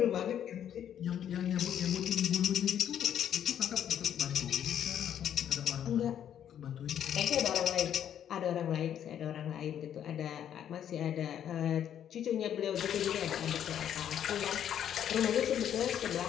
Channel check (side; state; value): right; quieter; 9.8 dB